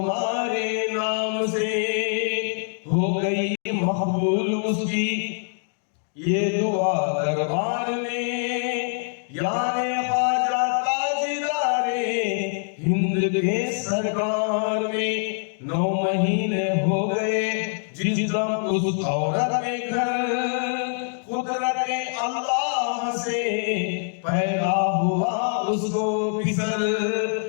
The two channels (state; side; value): silent; right; 60 dB below the other